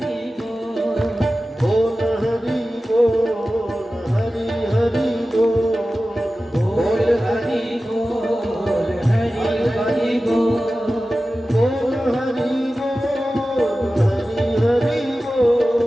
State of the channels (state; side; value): normal; both; correlation 0.95